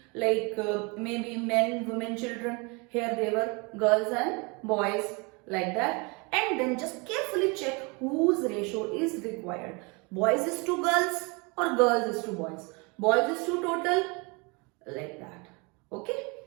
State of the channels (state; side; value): quieter; left; 29.6 dB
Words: like maybe men, women, children. Here they were girls and boys, like that. And then just carefully check whose ratio is required. Boys is to girls or girls is to boys. Boys is to total, like that. Okay.